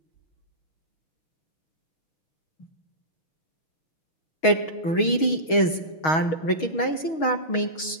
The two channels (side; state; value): right; late; 6.3 ms